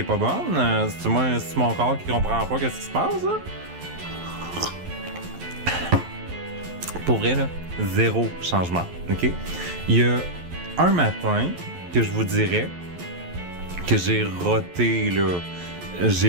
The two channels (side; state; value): left; late; 11 ms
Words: pas bonne? C'est-tu mon corps qui comprend pas qu'est-ce qui se passe, là? Pour vrai, là, 0 changement, ok? Il y a un matin que je vous dirais que j'ai roté, là.